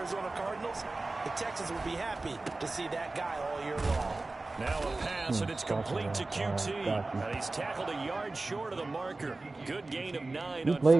Cardinals. The Texans will be happy to see that guy all year long. Now a pass, and it's complete to QT. And he's tackled a yard short of the marker. Good gain of 9 on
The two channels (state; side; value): quieter; left; 3.2 dB